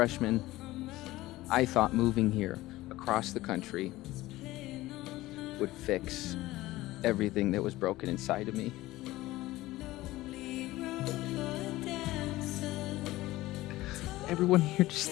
I thought moving here across the country would fix everything that was broken inside of me. Everyone here just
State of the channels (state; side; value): quieter; right; 17.6 dB